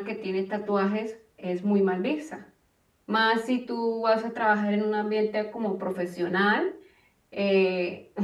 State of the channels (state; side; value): identical; both; correlation 1.00